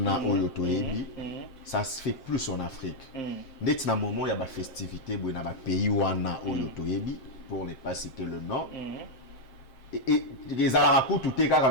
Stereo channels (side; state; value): right; late; 7.6 ms